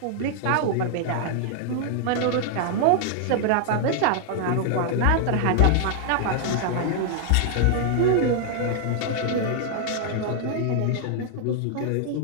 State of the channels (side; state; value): both; different; correlation 0.00